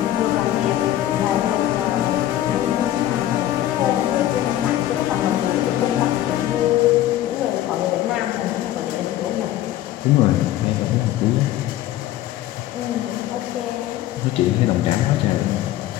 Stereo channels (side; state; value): right; quieter; 13.4 dB